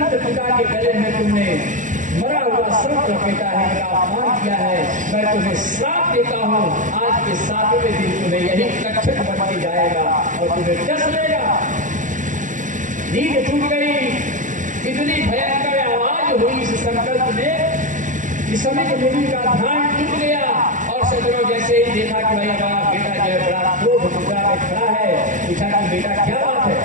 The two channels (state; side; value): late; left; 0.37 ms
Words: पिता के गले में तुमने मरा हुआ सर्प लपेटा है, मेरा अपमान किया है। मैं तुम्हें श्राप देता हूँ, आज के 7वें दिन तुम्हें यही तक्षक बन के जाएगा और तुम्हें डस लेगा। नींद टूट गई। इतनी भयंकर आवाज हुई इस संकल्प में, इस समय के मुनि का ध्यान टूट गया। और सज्जनों, जैसे ही देखा कि भाई हमारा बेटा जो है बड़ा क्रोध मुद्रा में खड़ा है, पूछा कि बेटा क्या बात है?